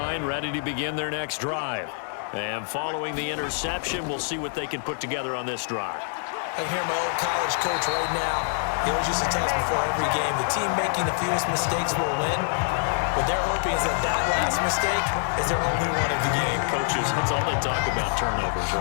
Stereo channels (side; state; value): right; silent; digital silence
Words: ready to begin their next drive. And following the interception, we'll see what they can put together on this drive. I can hear my old college coach right now. He always used to tell us before every game, the team making the fewest mistakes will win. What they're hoping is that last mistake is their only one of the game. Coaches, that's all they talk about, turnovers,